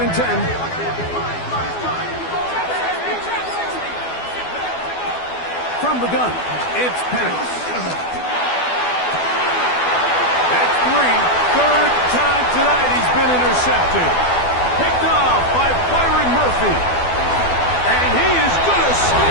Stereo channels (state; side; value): late; right; 12 ms